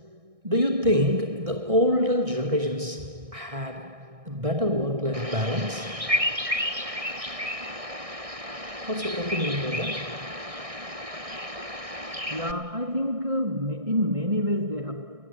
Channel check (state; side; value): late; left; 1.6 ms